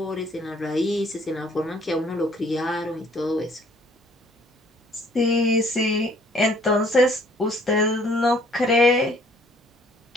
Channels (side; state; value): both; normal; correlation 0.59